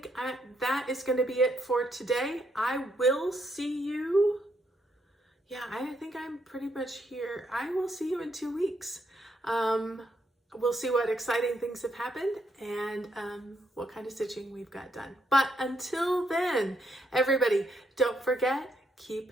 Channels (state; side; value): normal; both; correlation 0.76